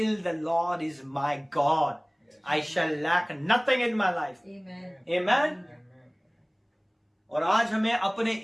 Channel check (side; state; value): both; identical; correlation 1.00